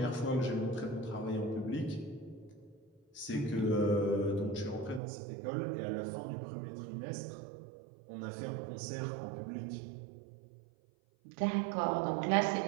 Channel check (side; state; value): left; drops out; at 5.0 s